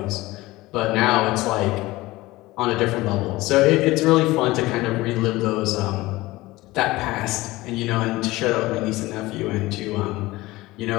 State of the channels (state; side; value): quieter; right; 19.3 dB